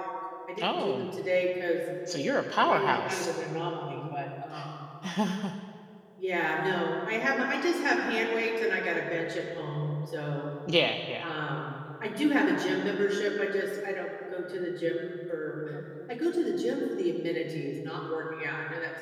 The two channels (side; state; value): both; identical; correlation 1.00